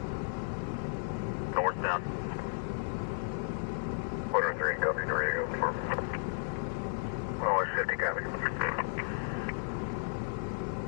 Northbound. 103, copy, ready to go. Oh, 50, copy.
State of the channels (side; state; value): right; silent; digital silence